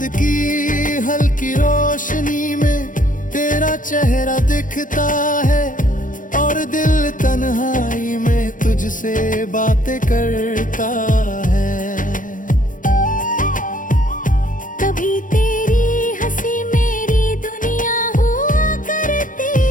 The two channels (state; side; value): late; right; 0.38 ms